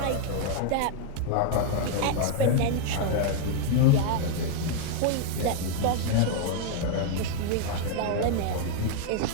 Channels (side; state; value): both; different; correlation 0.01